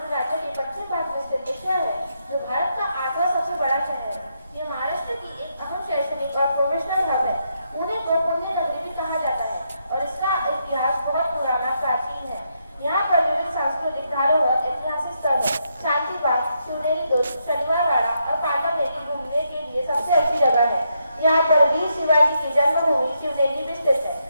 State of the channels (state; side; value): inverted; both; correlation -0.79